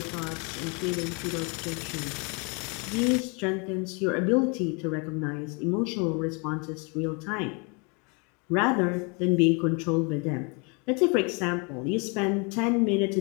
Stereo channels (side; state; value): right; quieter; 32.8 dB